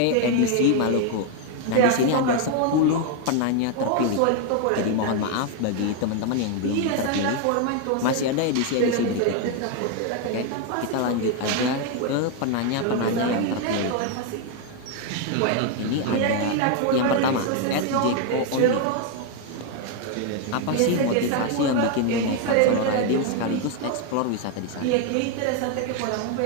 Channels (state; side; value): different; both; correlation 0.01